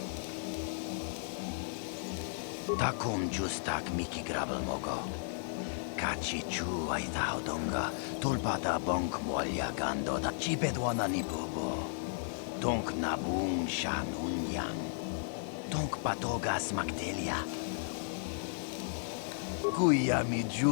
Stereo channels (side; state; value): right; silent; digital silence